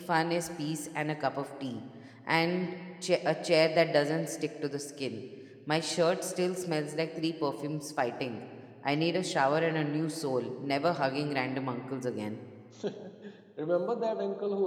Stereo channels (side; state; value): both; identical; correlation 1.00